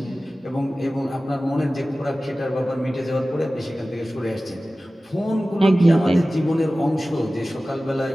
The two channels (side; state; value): both; normal; correlation 0.96